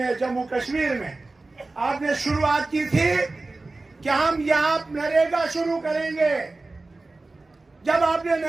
जम्मू कश्मीर में आपने शुरुआत की थी कि हम यहां नरेगा शुरू करेंगे। जब आपने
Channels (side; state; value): left; quieter; 3.3 dB